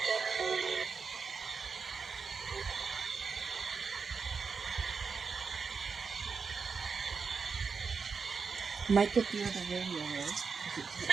Might get the other radio right?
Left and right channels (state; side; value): quieter; left; 5.3 dB